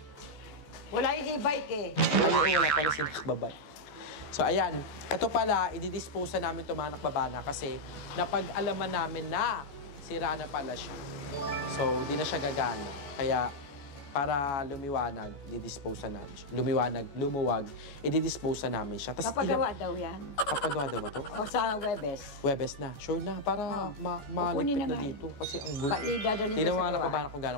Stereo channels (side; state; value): right; late; 14 ms